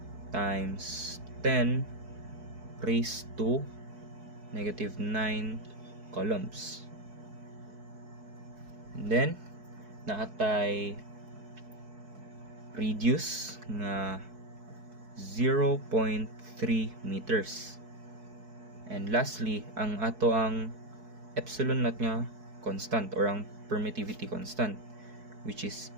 times 10 raised to negative 9 coulombs. And then naatay radius nga 0.3 meters. And lastly, ang ato ang epsilon naught nga constant, or ang permittivity constant, which is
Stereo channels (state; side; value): late; left; 4.6 ms